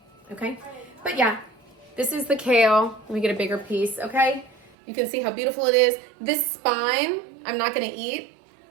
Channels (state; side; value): drops out; left; at 4.8 s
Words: okay? But yeah, this is the kale. Let me get a bigger piece, okay? You can see how beautiful it is. This spine, I'm not gonna eat.